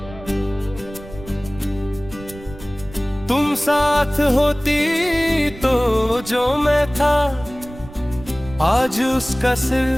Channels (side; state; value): right; noise; rumble, 17 dB below the sound